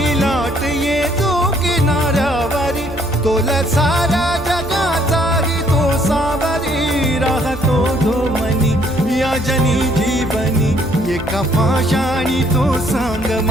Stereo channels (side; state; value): right; noise; hum, 14 dB below the sound